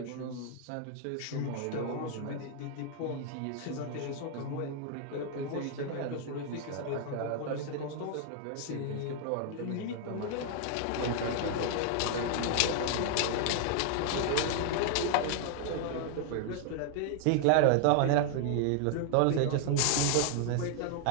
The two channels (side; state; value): both; different; correlation 0.00